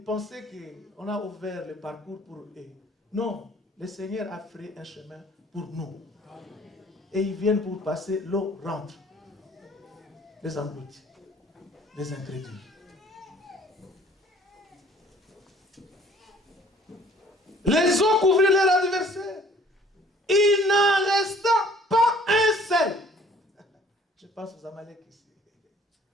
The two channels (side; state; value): both; normal; correlation 0.55